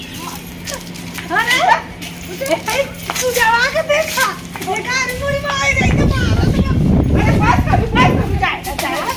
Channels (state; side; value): identical; both; correlation 1.00